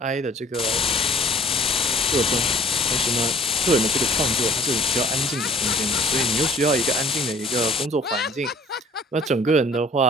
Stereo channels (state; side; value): normal; both; correlation 0.53